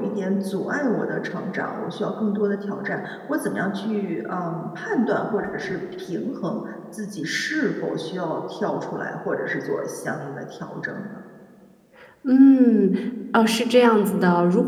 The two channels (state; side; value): identical; both; correlation 1.00